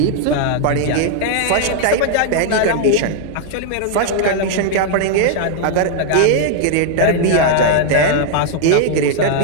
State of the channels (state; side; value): different; both; correlation 0.00